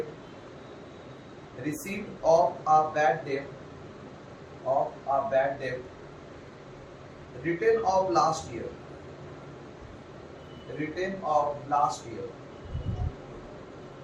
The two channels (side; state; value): both; identical; correlation 1.00